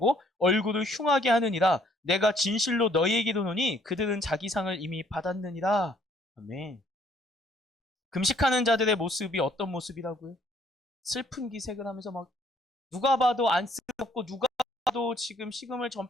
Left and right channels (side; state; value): both; normal; correlation 0.63